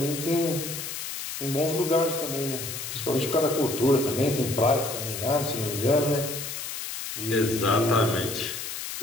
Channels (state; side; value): noise; left; hiss, 6 dB below the sound